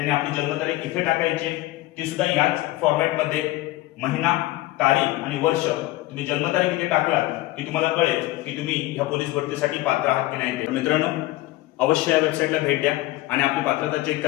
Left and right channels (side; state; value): right; quieter; 17.9 dB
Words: आपली जन्मतारीख इथे टाकायची आहे, ती सुद्धा याच फॉर्मॅटमध्ये महिना, तारीख आणि वर्ष तुम्ही जन्मतारीख इथे टाकलात की तुम्हाला कळेल की तुम्ही ह्या पोलीस भरतीसाठी पात्र आहात की नाही। मित्रांनो, अवश्य या वेबसाईटला भेट द्या आणि आपली पात्रता चेक